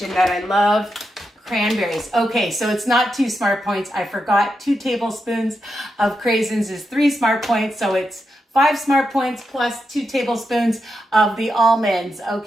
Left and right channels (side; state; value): both; normal; correlation 0.86